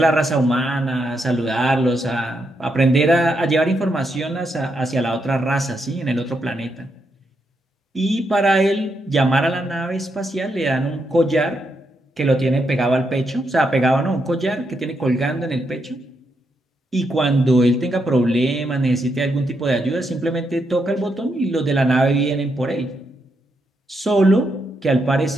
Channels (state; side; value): normal; both; correlation 0.80